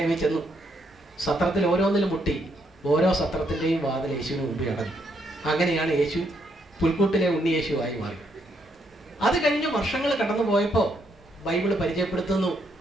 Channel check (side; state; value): both; normal; correlation 0.75